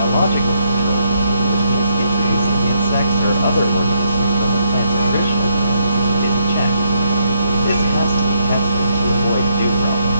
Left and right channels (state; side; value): inverted; both; correlation -0.74